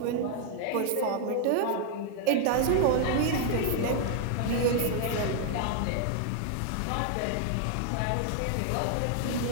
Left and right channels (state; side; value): different; both; correlation 0.00